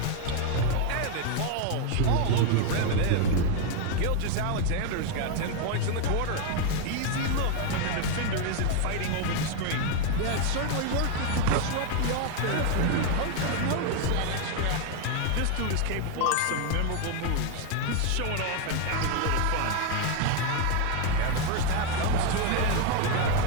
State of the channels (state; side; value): different; both; correlation 0.01